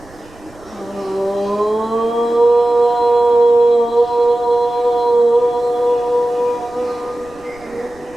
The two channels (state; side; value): noise; right; rumble, 26 dB below the sound